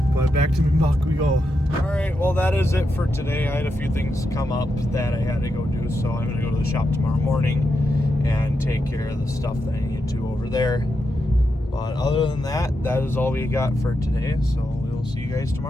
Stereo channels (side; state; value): both; normal; correlation 0.85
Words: But back to Minbach we go. Alright, well that is it for today. I had a few things come up that I had to go do, so I'm gonna go to the shop tomorrow morning and take care of the stuff that I need to over there. But other than that, that is all we got for today, so we'll see you guys